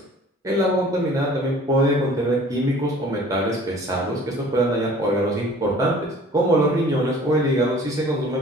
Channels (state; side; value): normal; both; correlation 0.49